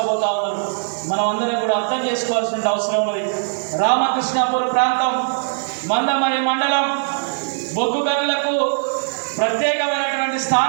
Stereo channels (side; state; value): left; silent; digital silence